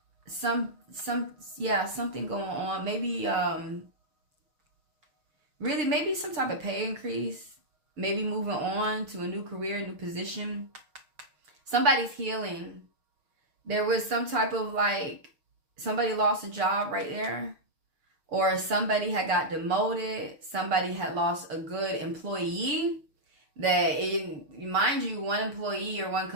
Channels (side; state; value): left; late; 6.8 ms